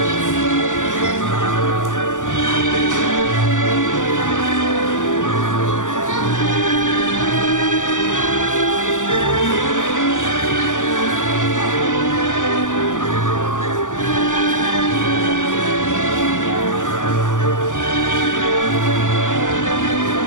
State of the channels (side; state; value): right; late; 0.87 ms